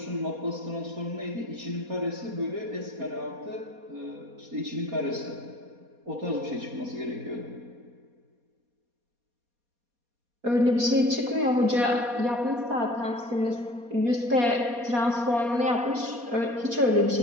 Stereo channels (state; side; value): late; left; 4.2 ms